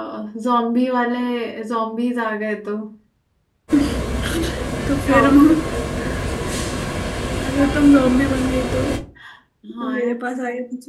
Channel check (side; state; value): both; identical; correlation 1.00